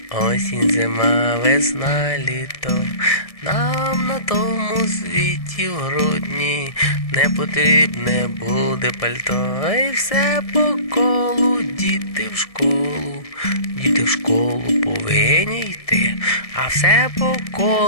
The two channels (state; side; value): late; right; 1.7 ms